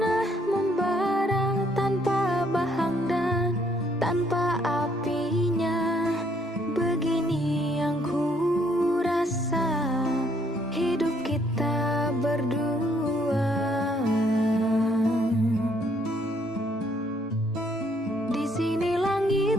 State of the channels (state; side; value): normal; both; correlation 0.67